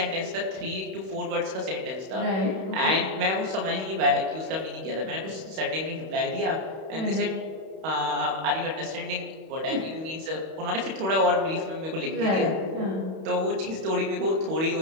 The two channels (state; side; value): late; left; 31 ms